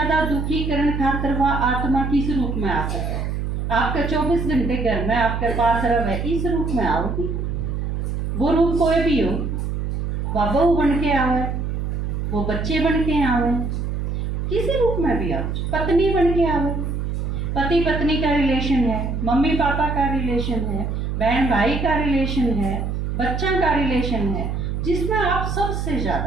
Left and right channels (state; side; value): noise; right; hum, 2 dB below the sound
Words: दुखी करने खातर वह आत्मा किस रूप में आ सके? आपका 24 घंटे घर में आपके पास रहे, इस रूप में आओगी। वो रूप कोई भी हो, वह बहू बन के आवे, वो बच्चे बन के आवे, किसी रूप में भी आओ, पत्नी बन के आवे, पति पत्नी का रिलेशन है, मम्मी पापा का रिलेशन है, बहन भाई का रिलेशन है, बच्चा का रिलेशन है, जिसमें आप सबसे